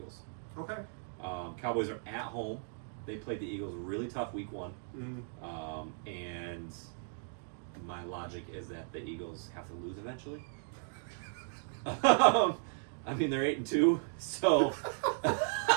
Okay. Cowboys are at home. They played the Eagles really tough week 1. And my logic is that the Eagles have to lose eventually. They're 8-2, so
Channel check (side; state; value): left; silent; digital silence